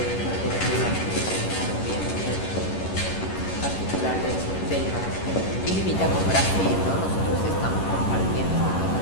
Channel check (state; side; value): late; right; 11 ms